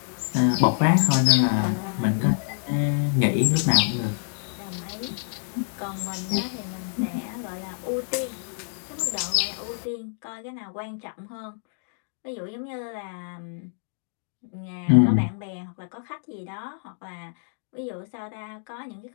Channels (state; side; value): silent; right; 60 dB below the other